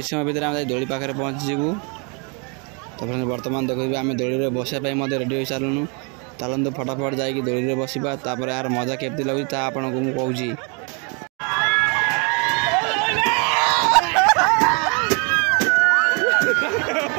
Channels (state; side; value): quieter; left; 34.3 dB